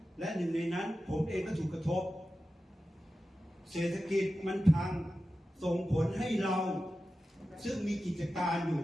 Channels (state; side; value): normal; both; correlation 0.93